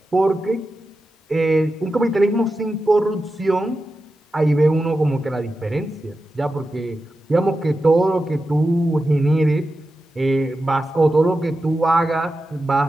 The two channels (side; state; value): both; normal; correlation 0.91